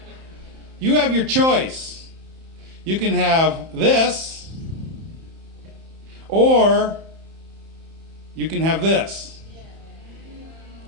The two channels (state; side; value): late; left; 31 ms